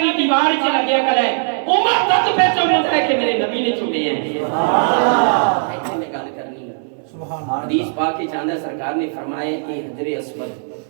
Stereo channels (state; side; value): silent; left; 65 dB below the other